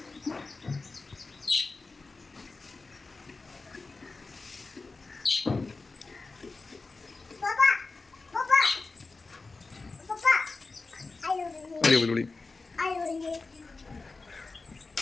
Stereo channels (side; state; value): right; quieter; 3.8 dB